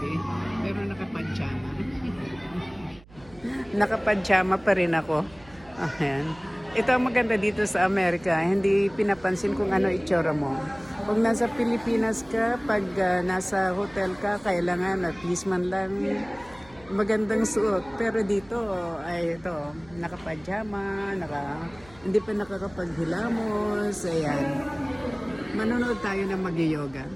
pero nakapadjama. Nakapadjama pa rin ako. Ayan. Ito ang maganda dito sa Amerika, hindi pinapansin kung ano itsura mo. Kung nasa Pilipinas ka, pag nasa hotel ka, kailangan at least man lang magandang suot. Pero dito ay ito, nakapajama, hindi pa nakakapaghilamos. Ayan. Manonood tayo ng mag-yoga.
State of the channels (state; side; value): noise; right; hum, 23 dB below the sound